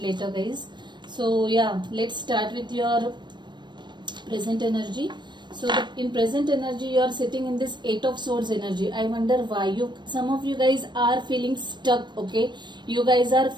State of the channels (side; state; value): left; late; 0.22 ms